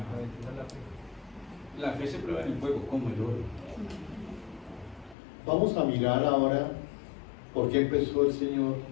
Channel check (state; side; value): drops out; right; at 5.2 s